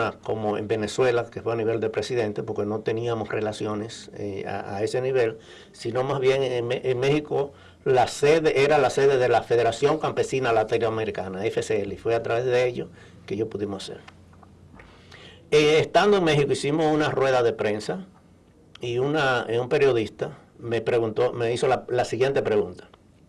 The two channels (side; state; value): both; identical; correlation 1.00